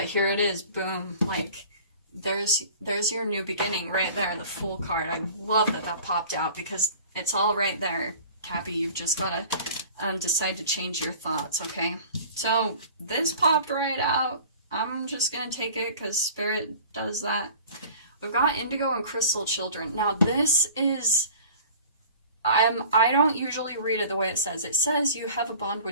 here it is. Boom. Like, there's your new beginning right there, the Fool card. I love that that popped out, because it's all right there, Cappy. You've just got to decide to change your thoughts, okay? So this popped right out. I'm just going to take it because Spirit does that. We've got Indigo and Crystal Children. Now this is, I don't usually read it the way it says. It says you have a bond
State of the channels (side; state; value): both; inverted; correlation -0.44